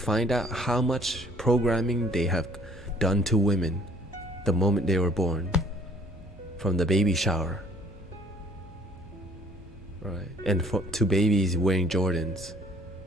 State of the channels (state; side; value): normal; both; correlation 0.57